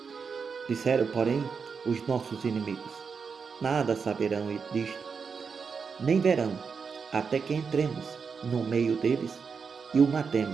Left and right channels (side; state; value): left; quieter; 5.7 dB